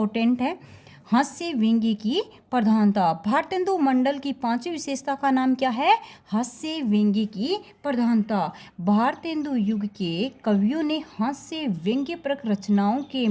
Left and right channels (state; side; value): identical; both; correlation 1.00